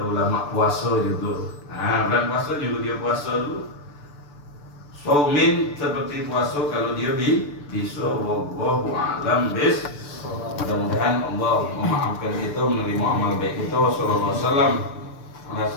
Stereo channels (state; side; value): late; right; 6.8 ms